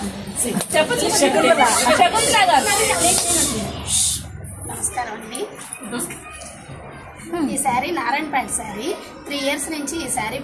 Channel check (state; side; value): identical; both; correlation 1.00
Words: నమస్కారం అండి. ఈ శారీ నారాయణపేట శారీ. 3 years నుంచి ఈ శారీ